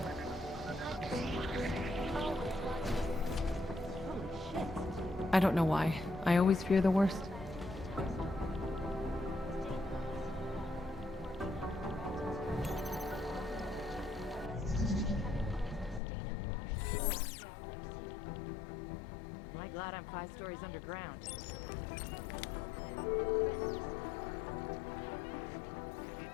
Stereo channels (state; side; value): drops out; right; at 16.0 s